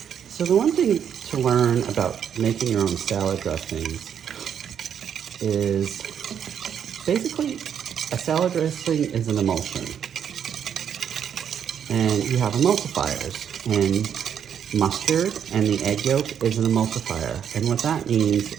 So the one thing to learn about making your own salad dressings is basically a salad dressing is an emulsion. And you have emulsifiers, and mustard and the egg yolk is an emulsifier. And what that means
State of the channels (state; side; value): quieter; left; 8.5 dB